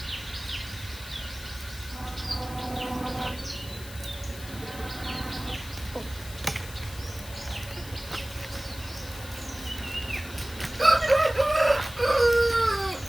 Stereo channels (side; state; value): left; noise; hiss, 15 dB below the sound